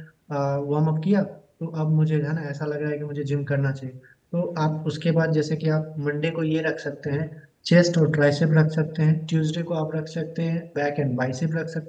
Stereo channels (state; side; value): identical; both; correlation 1.00